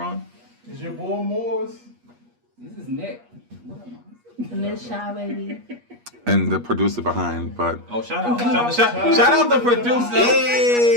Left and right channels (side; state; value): left; late; 8.4 ms